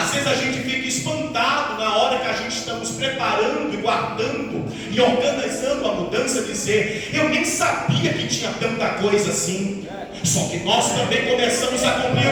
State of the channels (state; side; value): identical; both; correlation 1.00